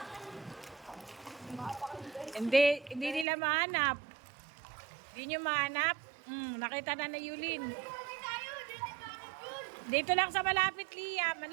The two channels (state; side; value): drops out; left; at 3.2 s